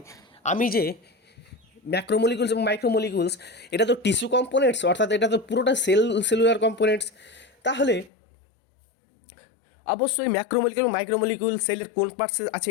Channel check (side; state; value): right; drops out; at 8.1 s